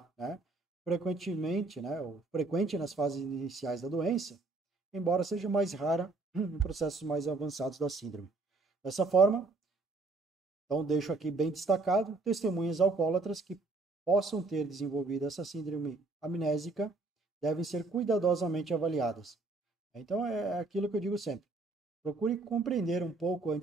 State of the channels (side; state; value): left; quieter; 3.5 dB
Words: né? Frequentemente, né, ou frequente nas fases iniciais da doença, embora seja mais rara em processos mais avançados da síndrome. Dessa forma, então deixo aqui bem destacado, testemunhas alcoólatras que possam ter desenvolvido essa síndrome amnésica devem ser cuidadosamente avaliadas. Então é aquilo que eu digo sempre. Procure compreender um pouco